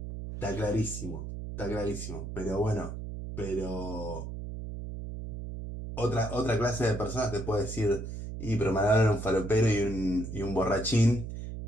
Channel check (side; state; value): right; noise; hum, 7 dB below the sound